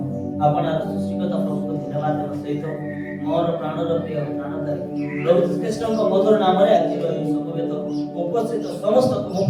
आपण सृष्टिकर्ता प्रभु को धन्यवाद देव सहित मोर प्राणर प्रिय प्राणदायी प्रभु श्रीकृष्ण मधुर नाम आज समवेत उपस्थित समस्त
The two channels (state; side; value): identical; both; correlation 1.00